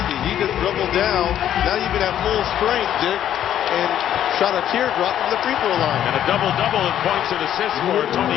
He just dribbled down, not even at full strength, Dick, and shot a teardrop from the free throw line. And a double-double in points and assists for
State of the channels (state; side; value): quieter; right; 10.8 dB